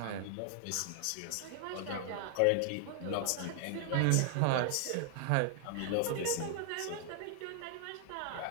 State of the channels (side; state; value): both; different; correlation 0.00